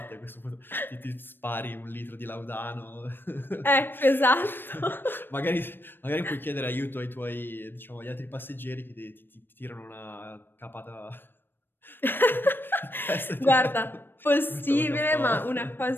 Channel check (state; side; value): late; right; 0.097 ms